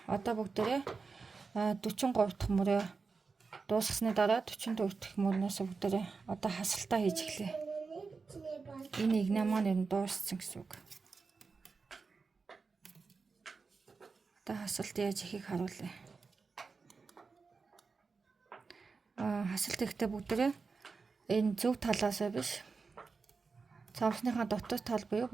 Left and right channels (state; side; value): quieter; left; 4.6 dB